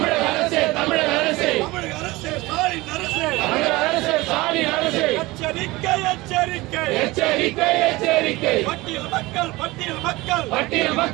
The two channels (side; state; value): left; quieter; 20.9 dB